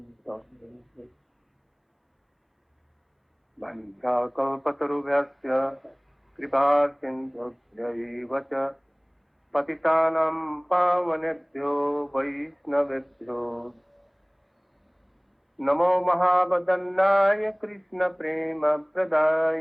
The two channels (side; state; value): both; identical; correlation 1.00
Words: तम् वञ्चाकल्पतरुभ्यश्च कृपासिन्धुभ्यैव च पतितानां पावनेभ्यो वैष्णवेभ्यो नमो महावदन्नाय